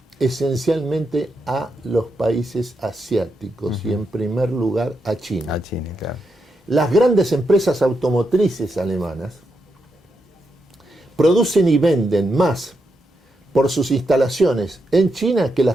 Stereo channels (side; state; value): both; normal; correlation 0.84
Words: esencialmente a los países asiáticos y en primer lugar a China. A China, claro. Las grandes empresas automotrices alemanas producen y venden más por sus instalaciones en China que